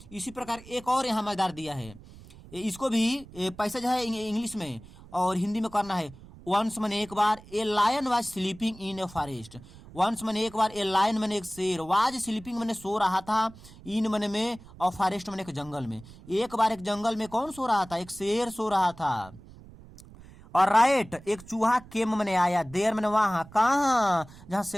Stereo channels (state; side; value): noise; right; rumble, 20 dB below the sound